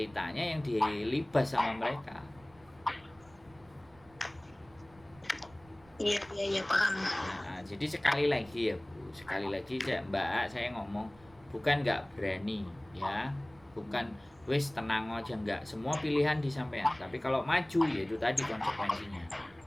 yang dilibas sama mereka. Iya paham. Nah, jadi sekali lagi ya Bu, sekali lagi Mbak, saya ngomong bukan nggak berani ya, bukan wis tenang aja, nggak, semua pilihan disampaikan. Tapi kalau maju ya itu tadi konsekuensinya.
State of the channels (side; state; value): right; noise; rumble, 26 dB below the sound